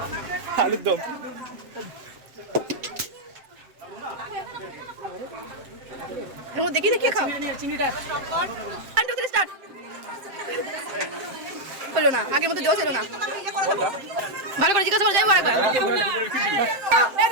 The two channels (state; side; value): late; left; 7.7 ms